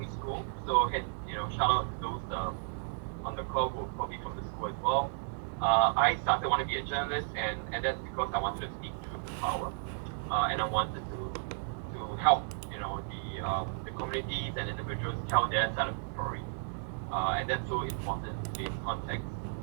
School. So shout out to those on the call who are probably from the school as well. I started wanting to be a journalist, and that's because I wanted to speak truth to power, and I wanted to help the communities and individuals tell their side of the story, and that's so important in today's context.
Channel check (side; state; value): left; silent; digital silence